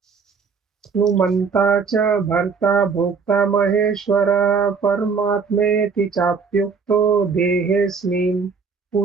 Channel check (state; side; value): quieter; left; 5.4 dB